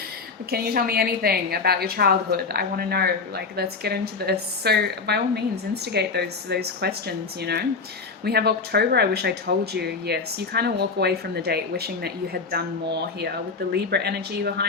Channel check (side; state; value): right; quieter; 4.6 dB